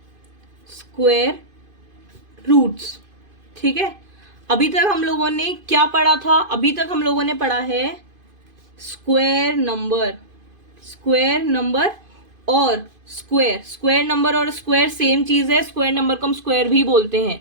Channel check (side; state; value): left; late; 2.5 ms